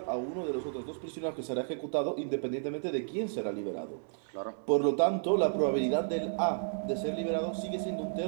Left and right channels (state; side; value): silent; left; digital silence